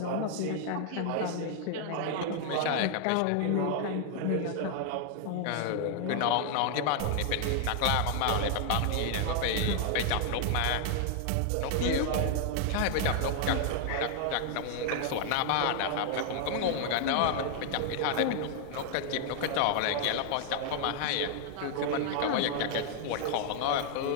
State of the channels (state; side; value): different; both; correlation 0.00